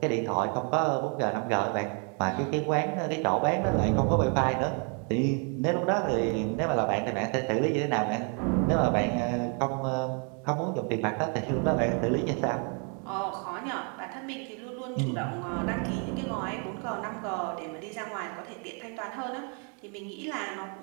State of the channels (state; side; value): quieter; left; 38.6 dB